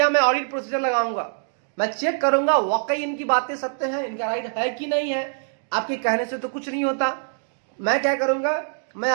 मैं ऑडिट प्रोसीजर लगाऊंगा, मैं चेक करूंगा वाकई इनकी बातें सत्य हैं, इनका राइट है कि नहीं है। आपके कहने से तो कुछ नहीं होता, मैं क्या करूंगा, मैं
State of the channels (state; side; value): silent; left; digital silence